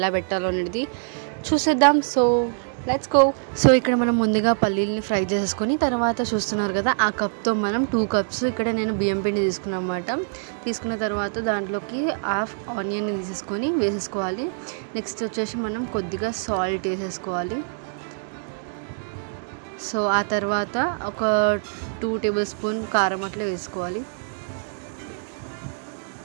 పెట్టాలో అనేది చూసేద్దాం. So let's go. సో ఇక్కడ మనం ముందుగా పల్లీల్ని ఫ్రై చేసేసుకొని తర్వాత చూస్తున్నారు కదా, ఆ కప్తో మనం 2 కప్స్ ఇక్కడ నేను బియ్యం పిండి తీసుకున్నాను అన్నమాట. తీసుకున్న తర్వాత దాంట్లోకి హాఫ్ ఆనియన్ వేసేసుకోవాలి. నెక్స్ట్ వచ్చేసి మనం కొద్దిగా సాల్ట్ వేసేసుకోవాలి. సో ఆ తర్వాత ఒక 2 టేబుల్ స్పూన్ కారం అట్లా వేసుకోవాలి.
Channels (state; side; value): silent; left; digital silence